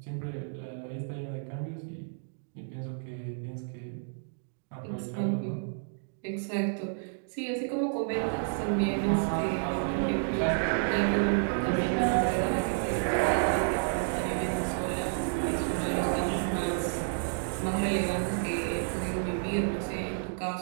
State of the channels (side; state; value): left; silent; digital silence